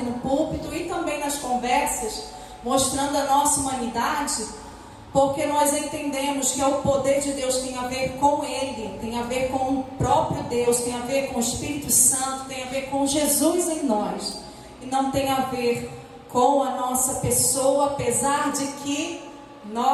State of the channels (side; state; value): both; identical; correlation 1.00